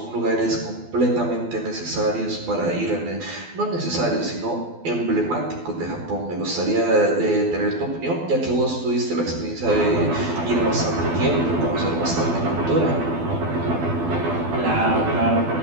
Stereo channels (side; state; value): left; late; 12 ms